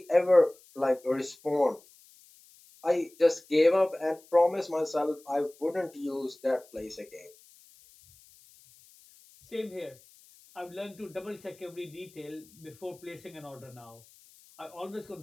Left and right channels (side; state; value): left; noise; hiss, 26 dB below the sound